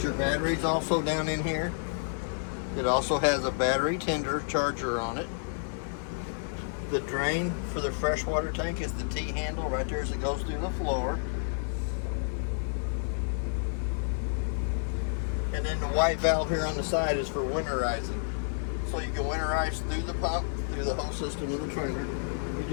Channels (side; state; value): right; silent; 58 dB below the other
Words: your battery's also down in here. It also has a battery tender charger on it. The drain for the freshwater tank is the T-handle right there as it goes through the floor. And then the white valve here on the side is for winterizing. So you can winterize through the pump, through the whole system of the trailer.